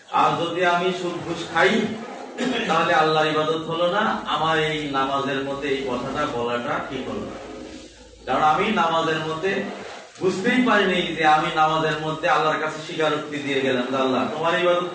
আর যদি আমি সুদ ঘুষ খাই, তাহলে আল্লাহর ইবাদত হলো না। আমার এই নামাজের মধ্যে এই কথাটা বলাটা ঠিক হলো না, কারণ আমি নামাজের মধ্যে বুঝতেই পারিনি যে আমি নামাজের মধ্যে আল্লাহর কাছে স্বীকারোক্তি দিয়ে গেলাম যে আল্লাহ তোমার ইবাদত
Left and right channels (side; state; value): both; identical; correlation 1.00